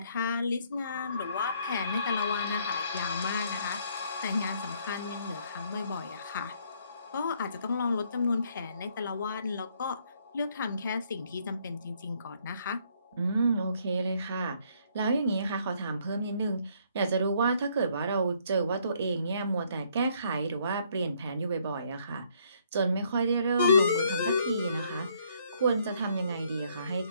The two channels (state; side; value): inverted; both; correlation -0.67